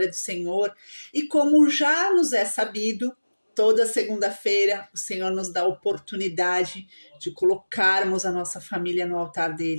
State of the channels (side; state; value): both; inverted; correlation -1.00